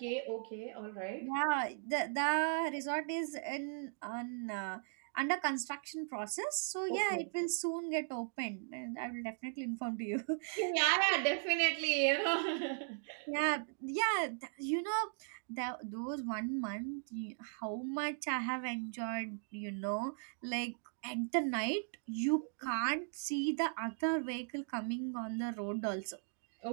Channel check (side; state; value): left; silent; digital silence